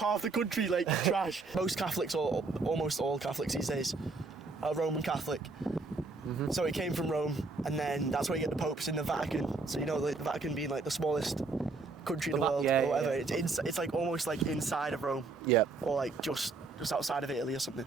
the country like trash. Most Catholics, or almost all Catholics these days, are Roman Catholic. So it came from Rome, and then that's where you get the popes in the Vatican. So you know, the Vatican being like the smallest country in the world, or whatever. Yeah. It's like almost like inside of Rome, or like just outside of Italy or something.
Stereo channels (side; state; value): left; quieter; 3.9 dB